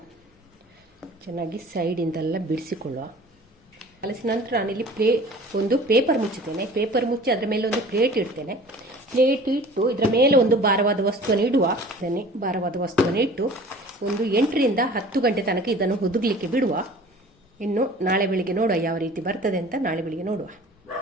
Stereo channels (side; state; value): both; normal; correlation 0.45